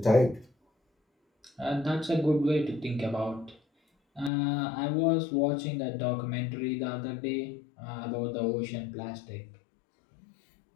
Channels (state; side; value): drops out; right; at 4.3 s